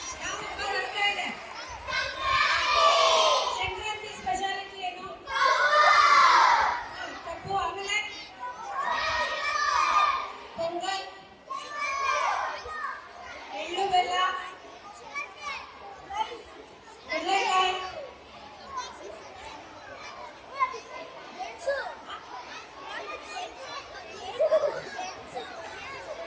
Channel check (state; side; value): identical; both; correlation 1.00